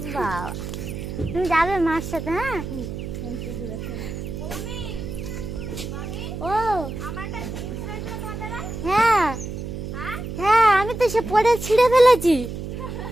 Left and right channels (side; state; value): right; noise; hum, 7 dB below the sound